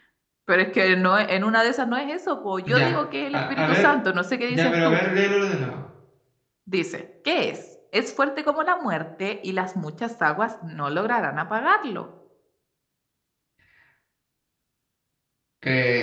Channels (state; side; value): identical; both; correlation 1.00